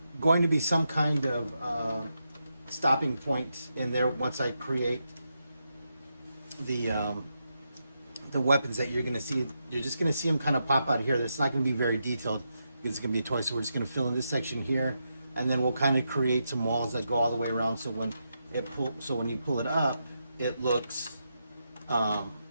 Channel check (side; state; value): both; inverted; correlation -0.84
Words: going to be some kind of stopping point in there once I create the weapons that you're going to see. You're just going to see them kind of pop out of here. It's not going to be very detailed because it's going to be a toy. So we're just going to fill in this section here, and then we'll kind of create some walls that go all the way around. So when you pull it up, it looks, you